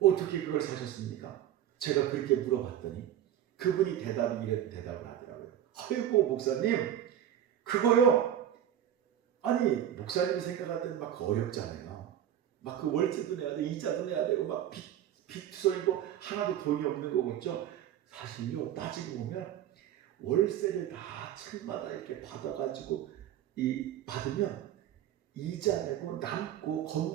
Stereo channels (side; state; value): left; quieter; 10.8 dB